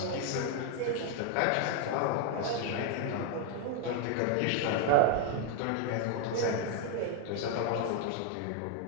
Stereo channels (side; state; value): both; different; correlation 0.01